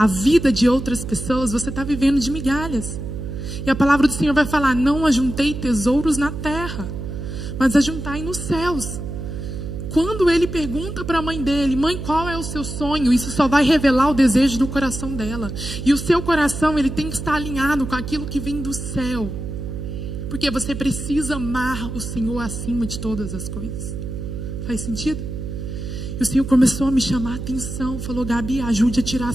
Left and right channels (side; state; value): right; noise; hum, 7 dB below the sound